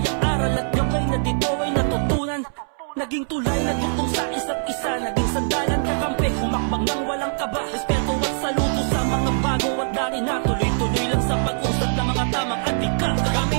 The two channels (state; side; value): silent; left; 64 dB below the other